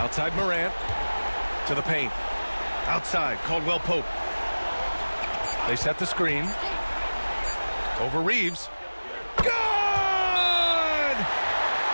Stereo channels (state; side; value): inverted; both; correlation -1.00